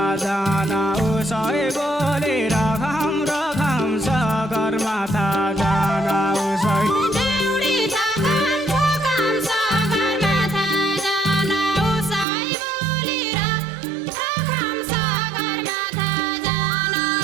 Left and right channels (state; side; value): drops out; left; at 12.2 s